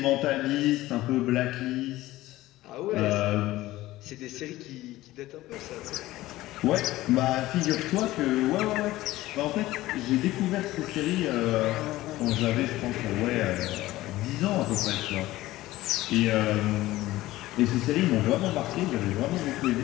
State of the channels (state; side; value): quieter; right; 16.9 dB